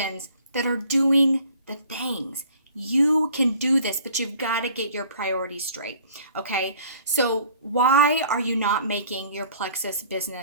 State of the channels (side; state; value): both; inverted; correlation -0.52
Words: that are doing the things. You can do this, but you've got to get your priorities straight, okay? So why are you not making your Plexus